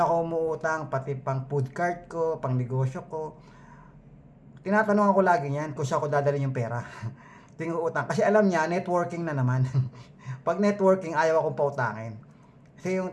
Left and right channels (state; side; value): identical; both; correlation 1.00